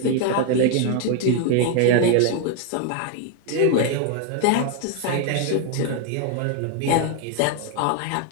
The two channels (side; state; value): both; different; correlation 0.01